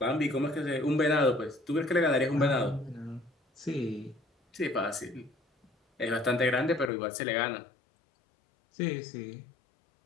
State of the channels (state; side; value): drops out; right; at 6.9 s